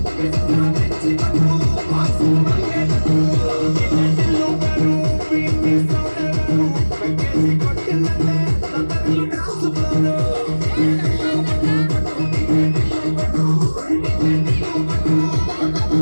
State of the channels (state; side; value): inverted; both; correlation -1.00